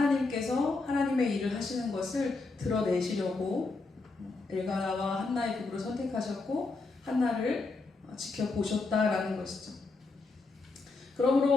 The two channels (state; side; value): quieter; right; 3.7 dB